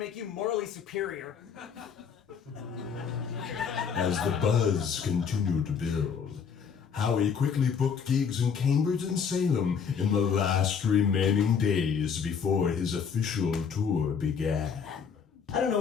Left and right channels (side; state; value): right; quieter; 6.6 dB